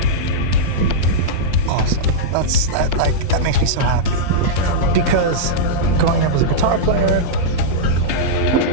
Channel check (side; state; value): left; late; 5.5 ms